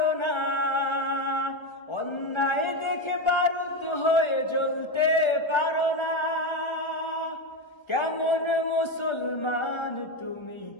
না, অন্যায় দেখে বারুদ হয়ে জ্বলতে পারো না। কেমন মুসলমান তুমি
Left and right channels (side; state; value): right; late; 1.3 ms